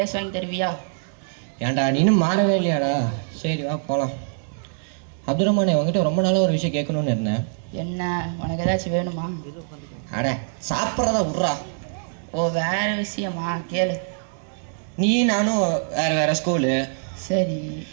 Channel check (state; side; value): silent; left; digital silence